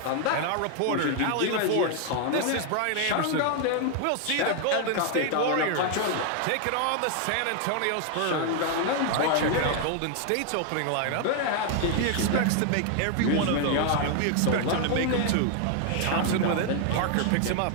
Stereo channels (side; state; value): both; different; correlation 0.00